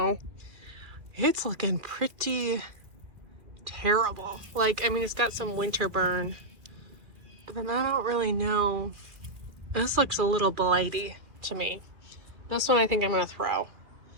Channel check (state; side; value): late; left; 2.6 ms